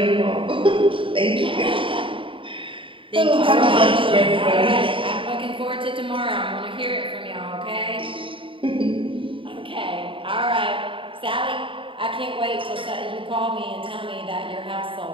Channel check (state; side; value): late; left; 0.25 ms